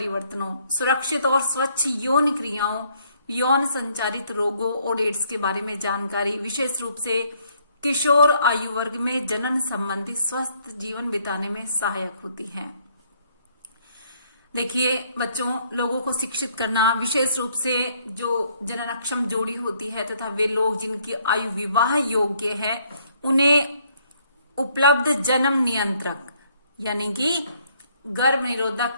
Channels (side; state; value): both; inverted; correlation -0.67